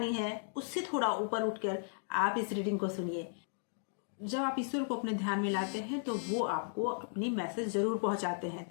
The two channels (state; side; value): silent; right; digital silence